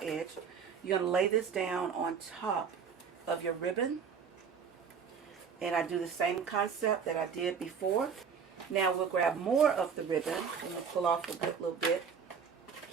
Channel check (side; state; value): left; quieter; 6.5 dB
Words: you're going to lay this down on top of your ribbon. And I do the same concept that I did before. Now we'll grab more of the ribbon and we'll pull off a little bit.